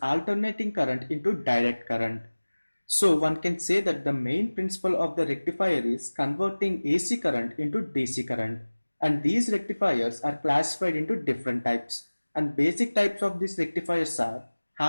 current into direct current. So one can say that the main principle of the rectifier is converting AC current into DC current. And these rectifiers are classified into different types. And basic types of these rectifiers are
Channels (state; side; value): inverted; both; correlation -1.00